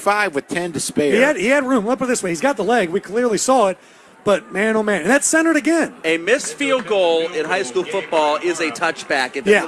with 10 to spare. He had room. Let's put it this way. He's got the leg. We clearly saw it. But, man, oh, man. And that's centered again. A missed field goal in high school football is a touchback if Yeah.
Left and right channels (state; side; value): identical; both; correlation 1.00